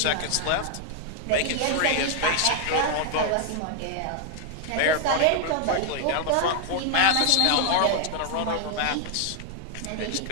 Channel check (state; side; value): different; both; correlation 0.00